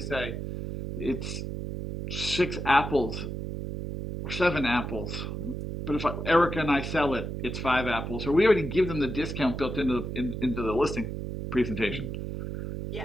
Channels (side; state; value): right; noise; hum, 5 dB below the sound